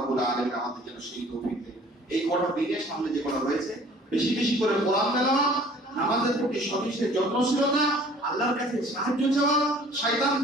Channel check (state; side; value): normal; both; correlation 0.52